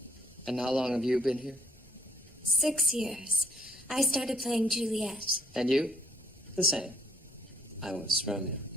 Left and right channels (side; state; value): both; normal; correlation 0.64